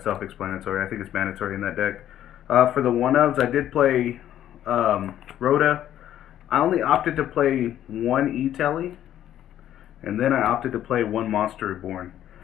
self-explanatory. I think it's mandatory in that deck. For the 1-ofs, I did play Rhoda. I only opted to play 1 E-Telly, and then I opted to play 1 Monster Reborn.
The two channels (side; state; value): right; quieter; 11.5 dB